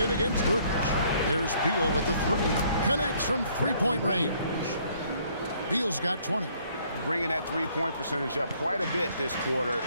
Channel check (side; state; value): both; inverted; correlation -0.63